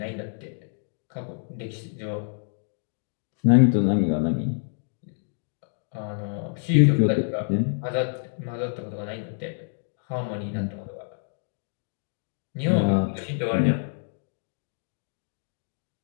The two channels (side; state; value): right; silent; digital silence